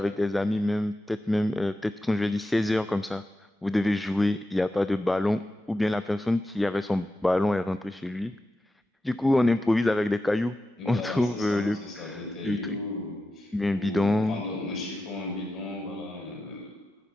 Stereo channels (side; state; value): both; normal; correlation 0.91